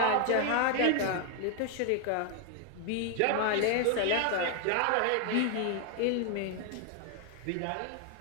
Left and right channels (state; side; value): different; both; correlation 0.00